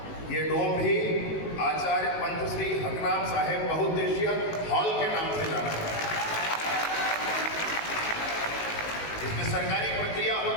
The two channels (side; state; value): right; late; 18 ms